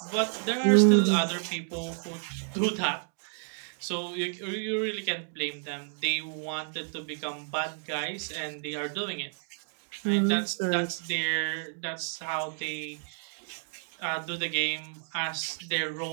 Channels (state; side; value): silent; left; 57 dB below the other